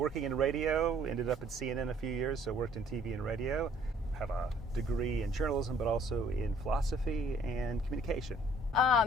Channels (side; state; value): both; normal; correlation 0.58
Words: in radio, ended up at CNN a few years, so worked in TV and radio. Have a degree in journalism, but also in philosophy and communication.